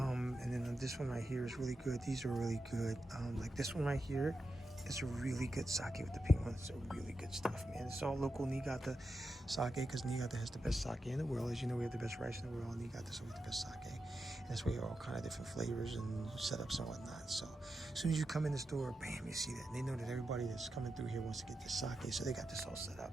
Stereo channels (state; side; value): normal; both; correlation 0.89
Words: then this one right here is really good. These are really good. Like this one right here is a really good sake with the pink one. It's a really good stuff, man. It's all local Niigata sake because Niigata has the best sake in the world. As you know, we have the best rice in the world. Niigata, so we have the best sake. And that's why you have all kind of different flavors and setups and whatnot. So as soon as you come in the store, bam, you see that. And they know that everybody that's coming through here wants to get this sake, so they got this all set up.